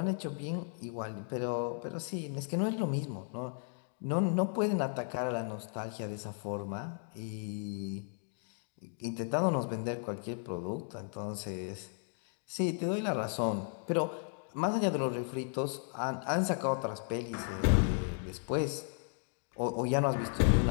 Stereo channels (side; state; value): right; silent; 54 dB below the other